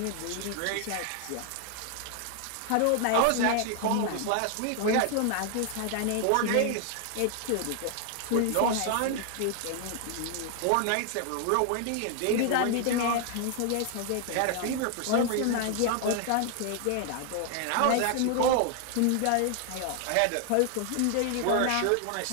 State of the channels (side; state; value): both; different; correlation 0.00